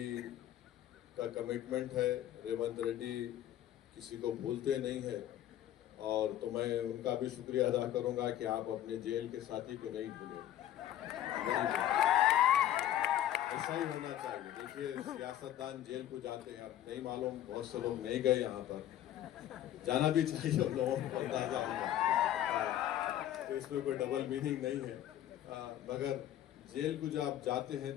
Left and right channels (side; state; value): right; quieter; 12.1 dB